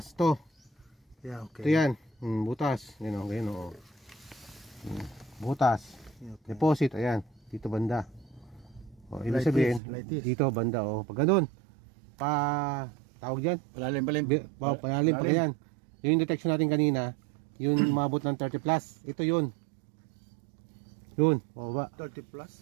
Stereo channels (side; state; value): left; drops out; at 9.8 s